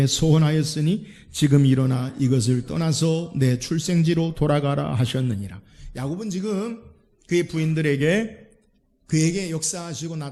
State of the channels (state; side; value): identical; both; correlation 1.00